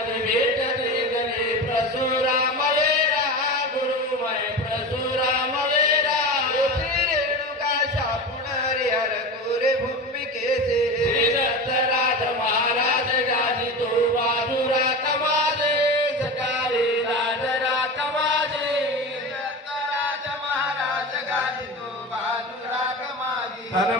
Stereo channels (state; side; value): normal; both; correlation 0.27